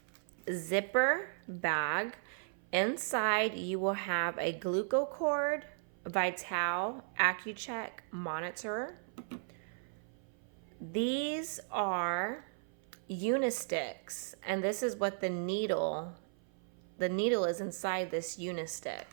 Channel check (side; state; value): left; silent; 54 dB below the other